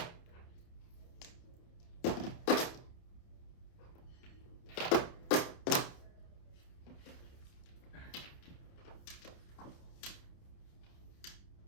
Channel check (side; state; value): right; late; 30 ms